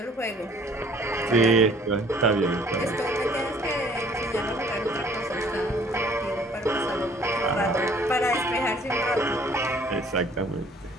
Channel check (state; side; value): normal; both; correlation 0.56